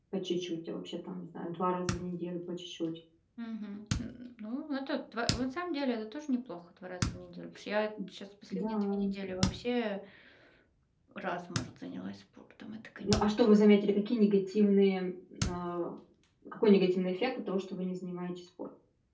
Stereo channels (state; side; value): identical; both; correlation 1.00